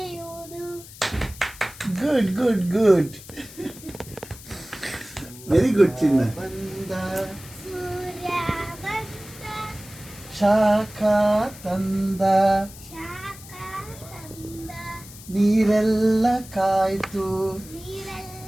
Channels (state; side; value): noise; left; hiss, 17 dB below the sound